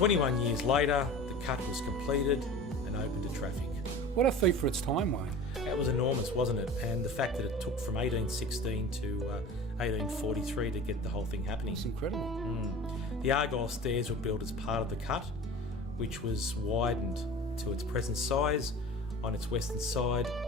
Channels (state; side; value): normal; both; correlation 0.38